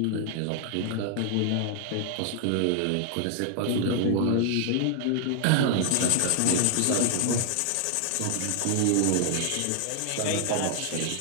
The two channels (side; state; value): both; different; correlation 0.00